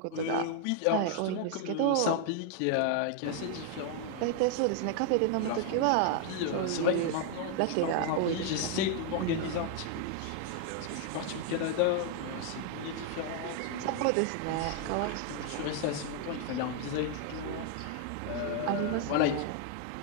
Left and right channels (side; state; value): both; different; correlation 0.00